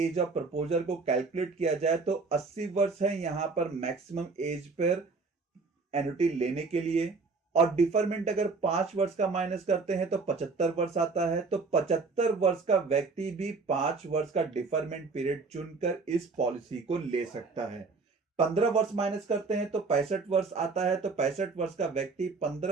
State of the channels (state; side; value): quieter; left; 4.2 dB